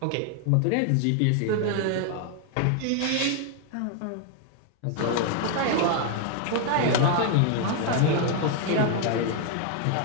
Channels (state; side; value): different; both; correlation 0.00